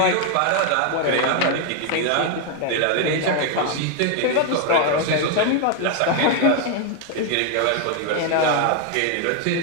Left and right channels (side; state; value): both; different; correlation 0.01